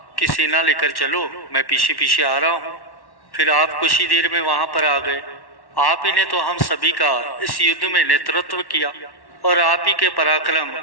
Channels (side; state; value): right; late; 1.1 ms